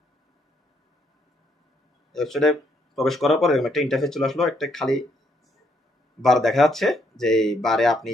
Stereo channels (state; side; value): normal; both; correlation 0.73